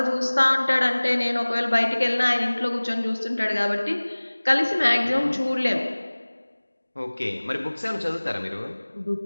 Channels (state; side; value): inverted; both; correlation -1.00